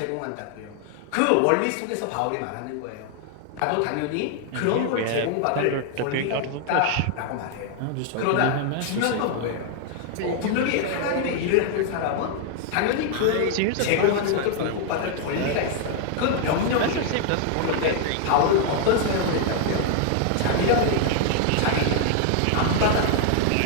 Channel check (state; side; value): different; both; correlation 0.00